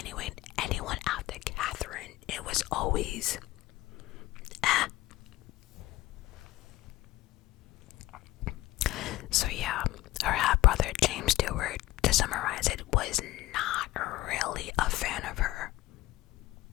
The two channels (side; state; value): right; quieter; 17.2 dB